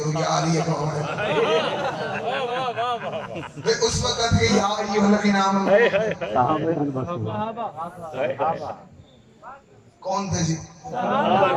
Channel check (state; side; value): identical; both; correlation 1.00